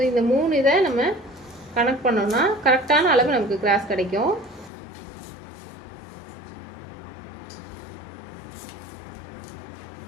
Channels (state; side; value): drops out; right; at 4.7 s